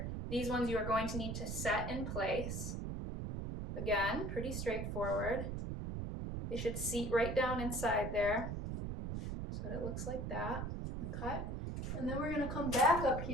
These ones you are going to need to set in place. Again, pretty straightforward. They should seat right down inside there. So it looks like that. Okay. And then we're going to come back up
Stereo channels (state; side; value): noise; right; rumble, 4 dB below the sound